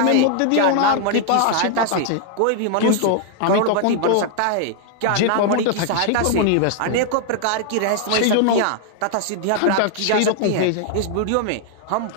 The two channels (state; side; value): different; both; correlation 0.00